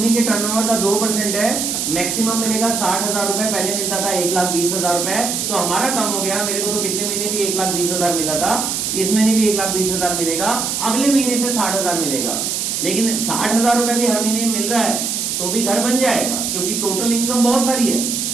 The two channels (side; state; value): right; noise; hiss, 1 dB below the sound